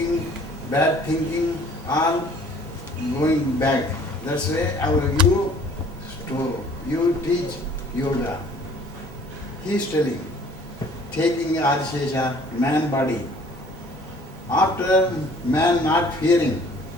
bad thinking, all going back. That's why you teach yoga. He is telling, taking Adishesha, man body. After man not fearing,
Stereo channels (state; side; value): normal; both; correlation 0.54